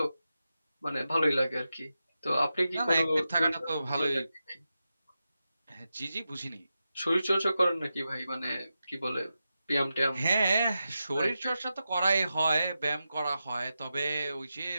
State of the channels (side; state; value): both; inverted; correlation -0.90